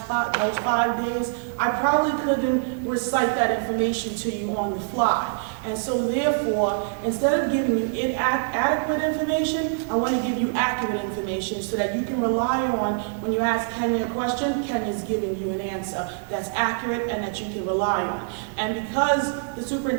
those 5 days, I probably couldn't recite that information to you on the fly. And so therefore, instead of giving you inadequate information, I want to give you accurate information so that you can rely on, when you ask Kenya a question, Kenya's giving you an answer that's accurate and that you can rely on. And because the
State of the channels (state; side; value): silent; left; 62 dB below the other